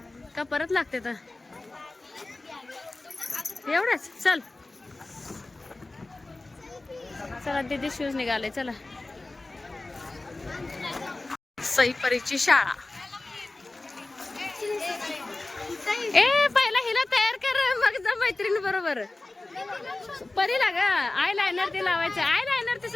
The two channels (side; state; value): right; quieter; 3.0 dB